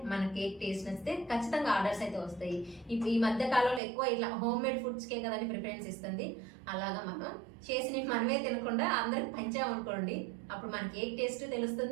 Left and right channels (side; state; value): left; drops out; at 3.8 s